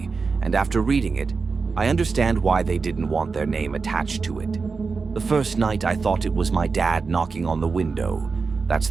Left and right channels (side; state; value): left; quieter; 4.7 dB